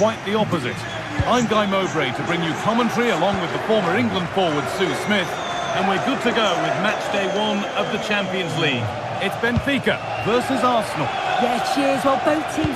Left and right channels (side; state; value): both; identical; correlation 1.00